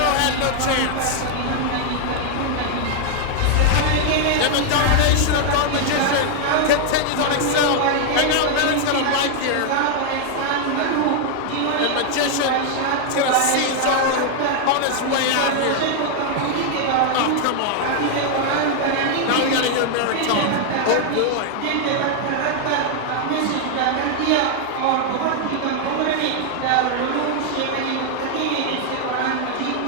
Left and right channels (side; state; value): both; different; correlation 0.00